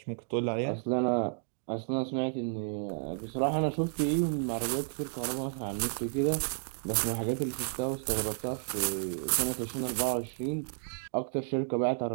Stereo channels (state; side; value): silent; left; 56 dB below the other